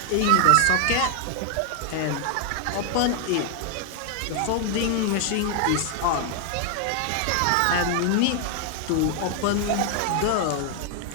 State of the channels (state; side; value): different; both; correlation 0.00